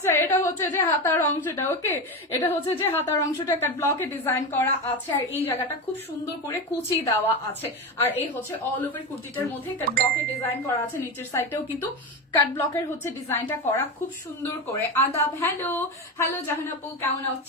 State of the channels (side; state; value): both; normal; correlation 0.19